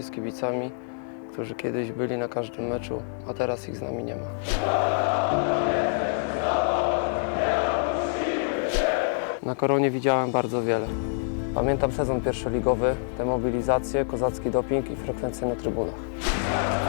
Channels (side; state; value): right; silent; digital silence